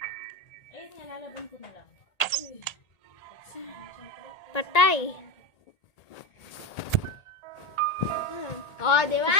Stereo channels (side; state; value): right; late; 1.8 ms